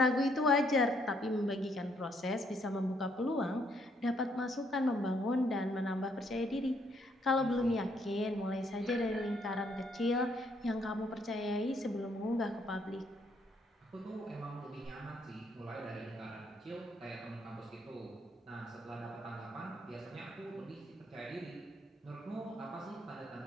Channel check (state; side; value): normal; both; correlation 0.70